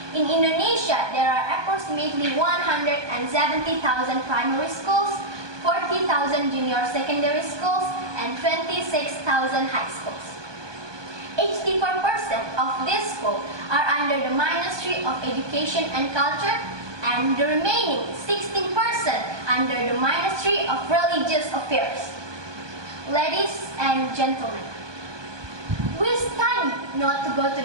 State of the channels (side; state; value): left; late; 1.2 ms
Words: in Indonesia there are approximately 170,000 primary schools, 40,000 junior secondary schools, and 26,000 high schools. 84% of these schools are under the Ministry of Education and Culture, and the remaining 16% under the Ministry of Religious Affairs. Ladies and gentlemen, we study not to go to